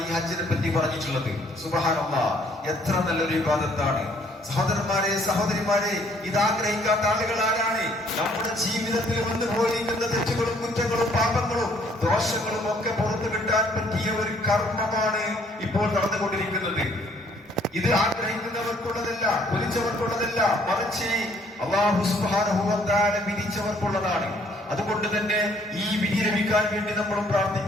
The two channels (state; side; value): normal; both; correlation 0.63